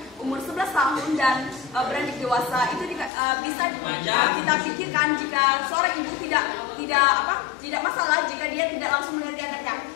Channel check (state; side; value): drops out; right; at 3.1 s